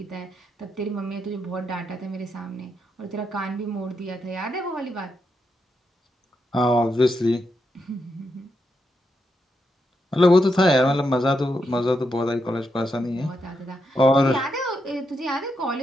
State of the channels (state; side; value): normal; both; correlation 0.83